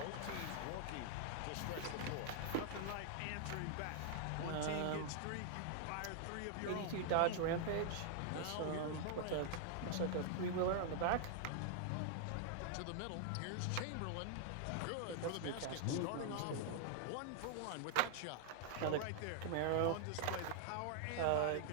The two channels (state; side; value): different; both; correlation -0.01